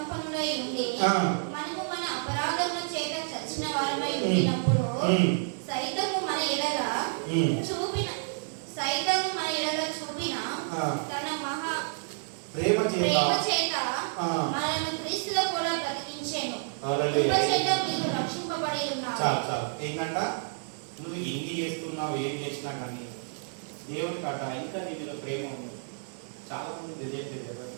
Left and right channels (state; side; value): silent; left; digital silence